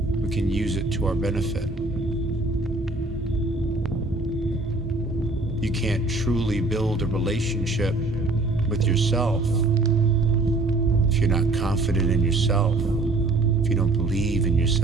can use it to our benefit. You can't truly build a relationship with yourself if you're not confident in yourself, if you don't believe in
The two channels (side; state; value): left; quieter; 3.1 dB